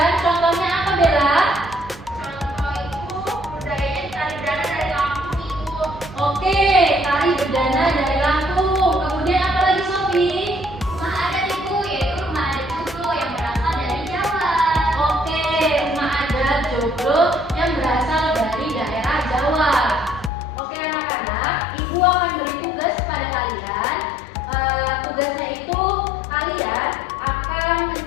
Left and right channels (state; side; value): drops out; right; at 20.3 s